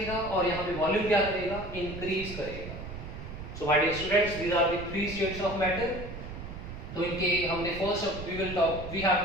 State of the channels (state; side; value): noise; right; rumble, 10 dB below the sound